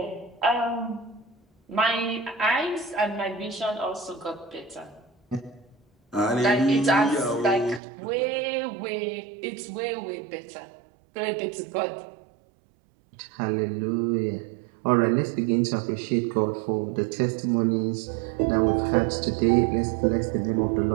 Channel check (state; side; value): drops out; left; at 7.8 s